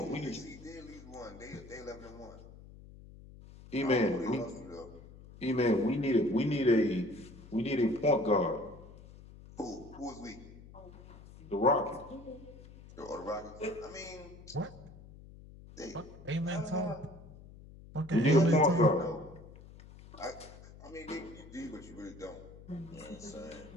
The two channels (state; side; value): noise; left; hum, 18 dB below the sound